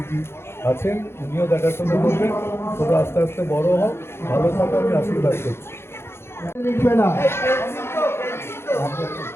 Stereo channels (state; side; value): late; right; 0.12 ms